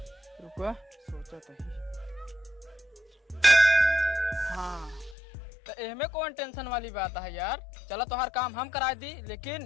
रुको सोचा तो ही। हाँ तो एहमे कौन टेंशन वाली बात है यार। चलो तो हर काम हम करा दी, लेकिन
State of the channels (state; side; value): drops out; right; at 5.2 s